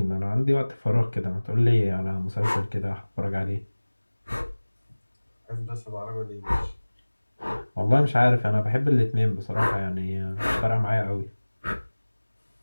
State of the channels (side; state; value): both; inverted; correlation -1.00